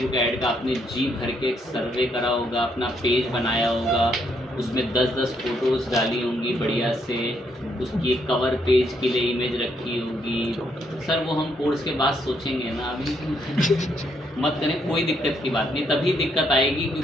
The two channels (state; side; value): normal; both; correlation 0.74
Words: ऐड का आपने जी भर के एक सर्वे करा होगा, अपना पेज बनाया होगा, उसमें 10-10 फ़ोटोज़ डाली होंगी बढ़िया से, उसकी एक कवर पेज के लिए इमेज रखी होगी। सर वो हम कोर्स के बाद सोचेंगे ना, अभी मत करें, कोई दिक्कत की बात नहीं। तभी दिक्कत आएगी